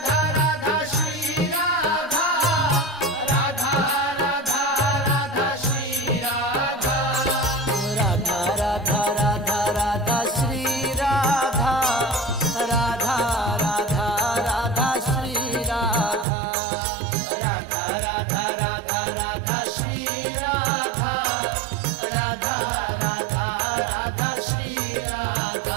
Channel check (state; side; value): drops out; left; at 16.2 s